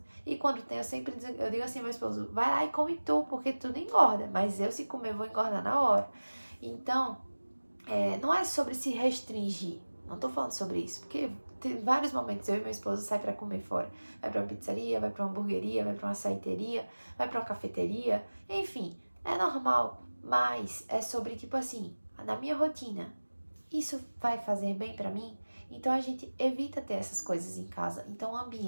E quando tem, eu digo assim ao meu esposo, vai lá e come tu, porque tudo engorda. Mas eu, se comer, vou engordar na hora. Então, não é sobre se restringir. Não tô falando sobre isso, porque tem vários momentos eu e meu esposo sai pra comer fora. Vai pra uma pizzaria, vai pra uma hamburgueria, vai pra uma açaiteria, vai pra uma cafeteria. Enfim, é normal, mas é sobre, tipo assim, na minha rotina, isso vai fazer bem pra mim? Então a gente evita ter essas coisas em casa. Então o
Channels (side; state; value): both; inverted; correlation -1.00